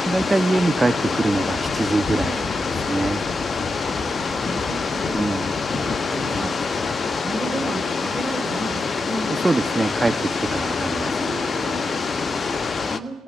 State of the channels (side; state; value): both; normal; correlation 0.88